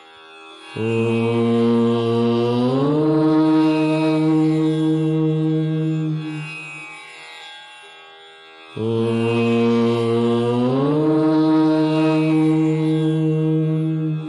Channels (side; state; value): both; identical; correlation 1.00